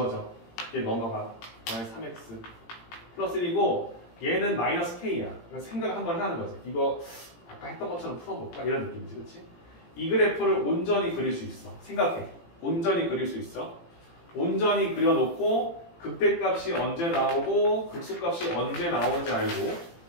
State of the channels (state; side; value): late; right; 18 ms